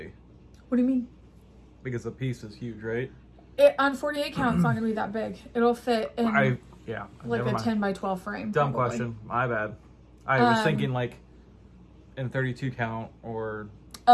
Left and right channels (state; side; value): identical; both; correlation 1.00